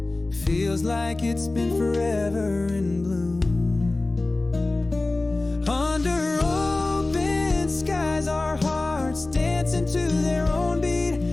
feels like it's been forever in bloom. Under open skies, our hearts dancing to their own beat.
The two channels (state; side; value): quieter; right; 3.0 dB